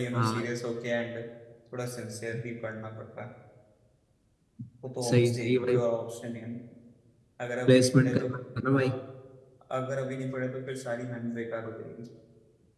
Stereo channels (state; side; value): identical; both; correlation 1.00